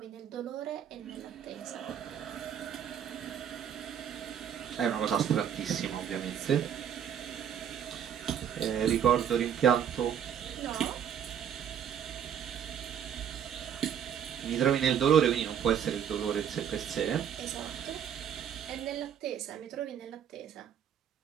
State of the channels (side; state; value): left; quieter; 8.8 dB